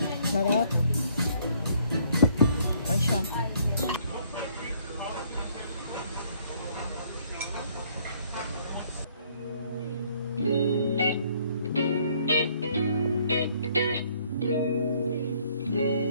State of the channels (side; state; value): both; inverted; correlation -0.63